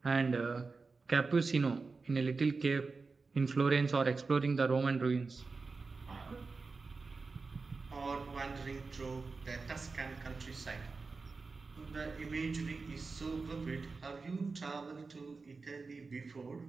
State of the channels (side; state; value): left; quieter; 4.2 dB